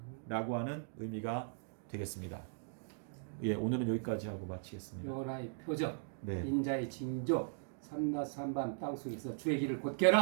하는 의미가 되겠습니다. 예, 오늘은 여기까지 하고 마치겠습니다. 여호와의 표적, 네. 인자의 징조, 삼낮 삼밤 땅속에서 주의 길을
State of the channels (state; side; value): silent; left; digital silence